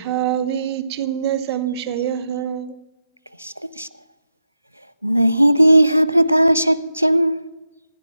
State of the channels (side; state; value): both; inverted; correlation -0.87